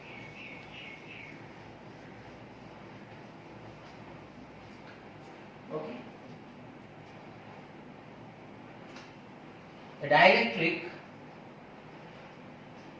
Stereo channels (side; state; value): both; identical; correlation 1.00